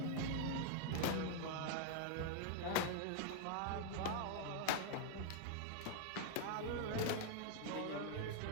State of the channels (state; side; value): different; both; correlation 0.00